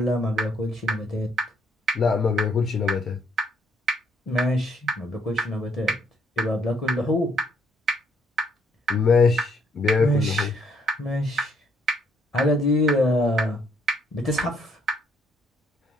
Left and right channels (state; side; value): normal; both; correlation 0.69